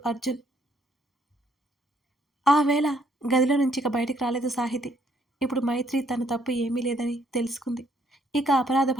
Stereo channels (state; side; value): normal; both; correlation 0.69